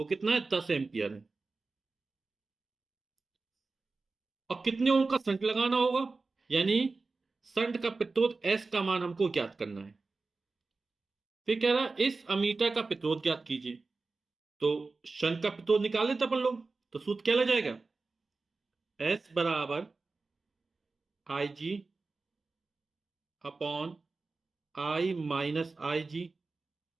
कितना है? 10 एम्पियर है। और कितने ओम का संट लगाना होगा? यानी संट का प्रतिरोध एस का मान हमको ज्ञात करना है। फिर कह रहा है इस अमीटर का प्रतिरोध ज्ञात कीजिए। तो शंट का प्रतिरोध निकाल लेते अपन लोग। तो सूत्र क्या लग जाएगा? एस बराबर I G upon I minus I G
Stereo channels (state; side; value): quieter; left; 3.8 dB